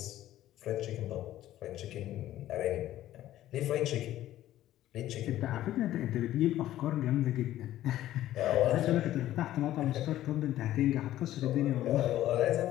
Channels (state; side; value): quieter; right; 13.7 dB